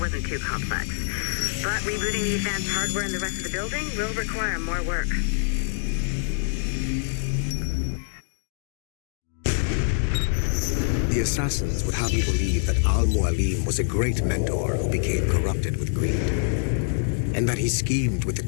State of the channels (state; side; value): silent; right; digital silence